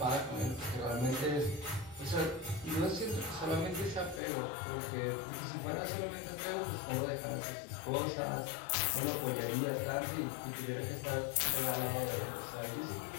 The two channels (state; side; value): drops out; right; at 4.2 s